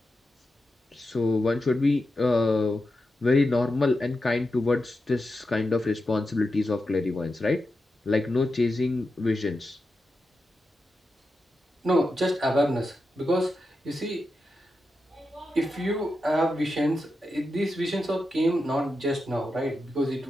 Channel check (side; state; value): both; normal; correlation 0.89